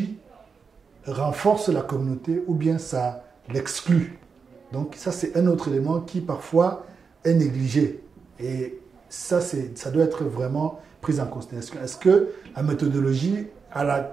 renforce la communauté ou bien ça l'exclut. Donc ça, c'est un autre élément qui parfois est négligé. Et ça doit être vraiment pris en considération. Est-ce que la méthodologie, à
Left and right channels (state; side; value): quieter; left; 5.4 dB